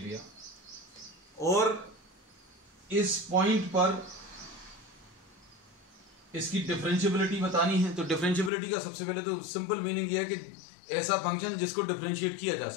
और इस पॉइंट पर इसकी डिफरेंशिएबिलिटी बतानी है। तो डिफरेंशिएबिलिटी का सबसे पहले तो सिंपल मीनिंग ये है कि ऐसा फंक्शन जिसको डिफरेंशिएट किया जा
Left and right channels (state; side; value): drops out; right; at 8.5 s